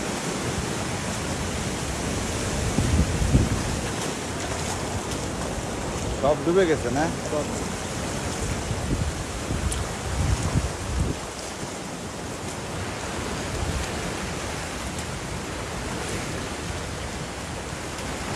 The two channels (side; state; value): both; identical; correlation 1.00